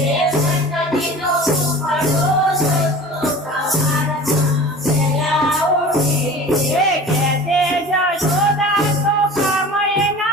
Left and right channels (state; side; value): normal; both; correlation 0.39